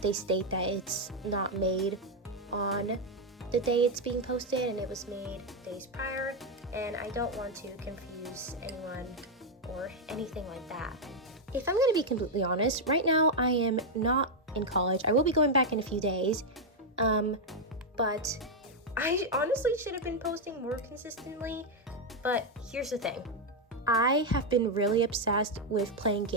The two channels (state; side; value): normal; both; correlation 0.02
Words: they state that it's not made on the day it's being posted and it was made days prior, and I don't want to confuse anyone or anything like that. If I'm going to be completely honest, right now I am not in college. I will be going back in a few days, but I honestly should have been posting more consistently. But here's the thing. I have been really obsessed with playing